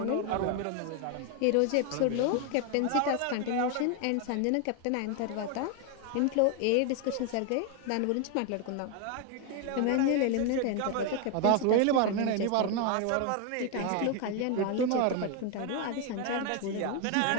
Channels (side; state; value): both; different; correlation 0.01